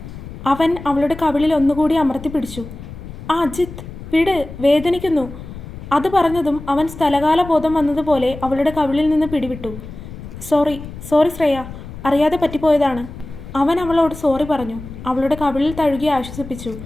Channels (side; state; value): left; noise; rumble, 13 dB below the sound